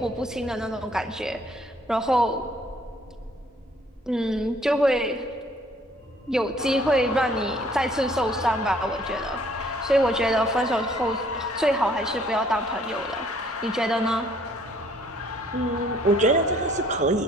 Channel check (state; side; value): normal; both; correlation 0.60